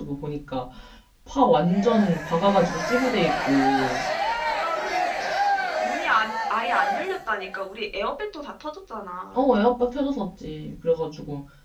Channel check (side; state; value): both; identical; correlation 1.00